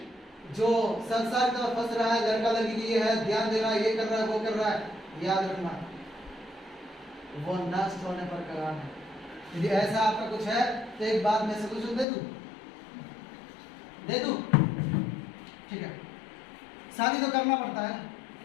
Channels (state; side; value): drops out; right; at 12.1 s